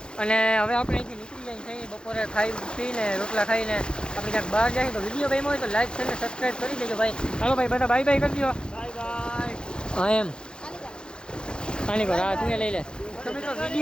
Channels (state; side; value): late; right; 0.049 ms